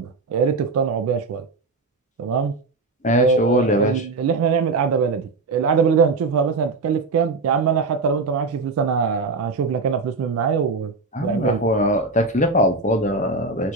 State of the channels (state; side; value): quieter; left; 3.5 dB